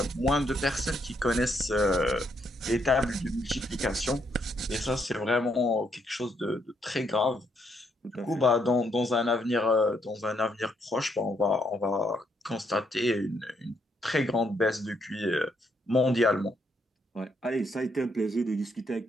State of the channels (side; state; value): both; normal; correlation 0.74